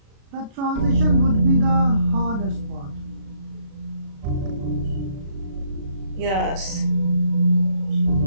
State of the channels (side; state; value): left; late; 36 ms